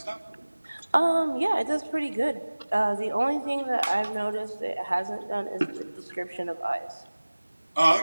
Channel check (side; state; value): both; inverted; correlation -1.00